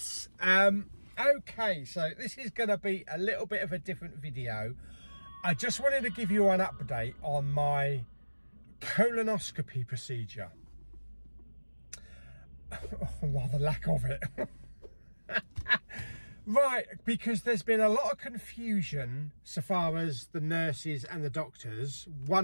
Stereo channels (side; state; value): both; inverted; correlation -1.00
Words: Okay, so this is going to be a little bit of a different video. I just wanted to give you an update on my colonoscopy procedure. Well, the lack of it. Right, because there's been a lot of confusion so far as the nurses and the doctors.